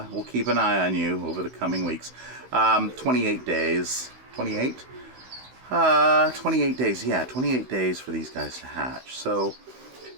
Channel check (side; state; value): left; late; 16 ms